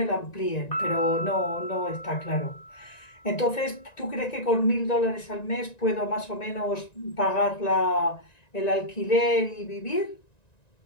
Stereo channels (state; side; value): late; right; 1.9 ms